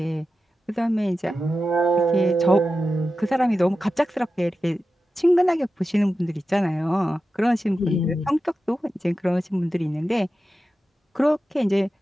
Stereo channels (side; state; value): both; normal; correlation 0.92